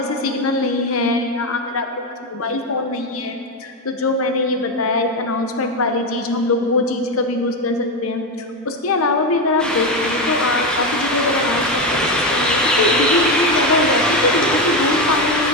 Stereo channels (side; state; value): both; normal; correlation 0.12